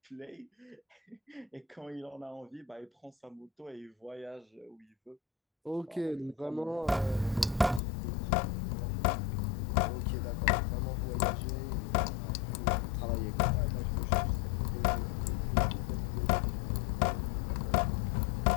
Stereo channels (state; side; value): drops out; right; at 7.8 s